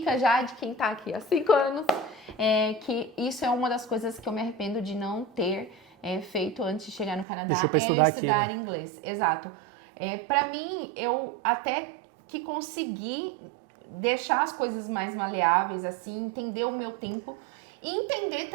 já de quem tá aqui há 5 anos, que isso é uma das coisas que eu me arrependo de não ter feito antes de chegar no Canadá, estudar inglês. Exato. Para mim, eu até que consegui deixar as coisas mais maleáveis, assim, entender o meu tempo e entender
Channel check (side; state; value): left; drops out; at 7.2 s